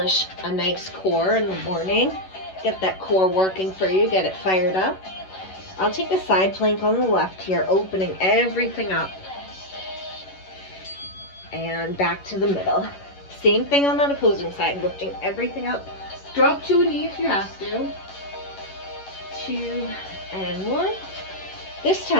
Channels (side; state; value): right; late; 11 ms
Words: a nice core in the morning. Get that core working for you, get it fired up. I'll take a side plank on the left here, opening everything up. And back to the middle. Same thing on that opposing side, lifting everything up. Drop to a knee if you have to. 2 and 1. This